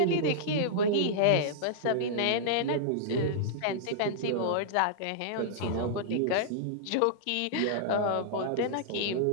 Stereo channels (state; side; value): different; both; correlation -0.02